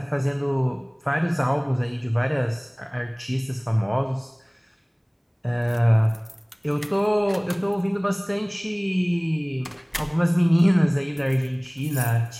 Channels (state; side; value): identical; both; correlation 1.00